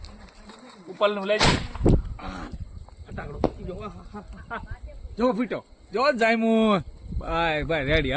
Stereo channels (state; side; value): identical; both; correlation 1.00